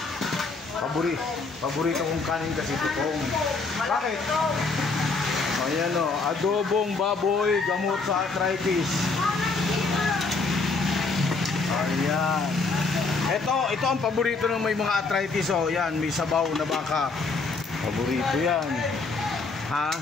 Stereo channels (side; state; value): right; quieter; 4.0 dB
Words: Paborito kong kanin kasi tutong. Bakit? Ayan o, adobong baboy, gamot sa arthritis. Ayan. Ito ang paborito ng may mga arthritis. O, yan, may sabaw na baka. Paborito yan. Ha?